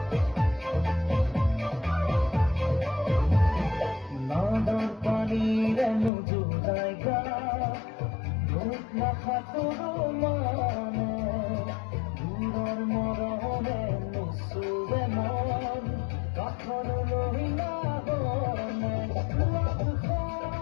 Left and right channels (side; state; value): right; drops out; at 6.1 s